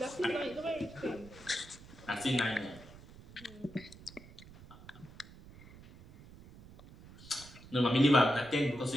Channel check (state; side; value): noise; right; rumble, 19 dB below the sound